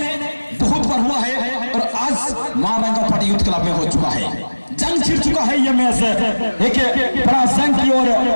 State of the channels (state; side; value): inverted; both; correlation -1.00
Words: बहुत बार हुआ है और आज महारंगा पार्टी यूथ क्लब में हो चुका है। जंग छिड़ चुका है ये मैच एक बड़ा जंग की ओर